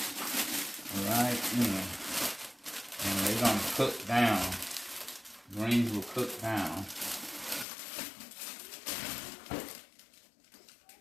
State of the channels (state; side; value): drops out; right; at 7.7 s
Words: right in. And they're gonna cook down. Greens will cook down.